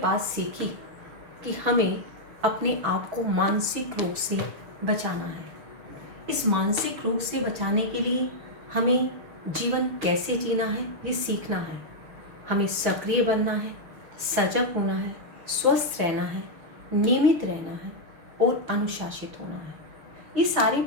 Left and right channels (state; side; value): late; left; 6.1 ms